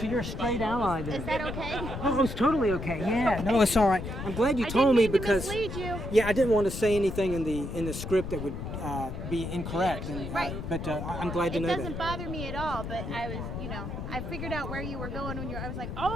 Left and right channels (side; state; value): left; noise; rumble, 6 dB below the sound